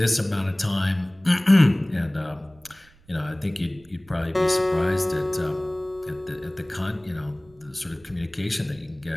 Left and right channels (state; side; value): noise; right; rumble, 28 dB below the sound